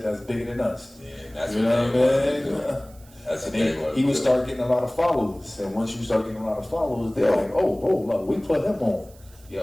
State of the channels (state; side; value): noise; right; hiss, 26 dB below the sound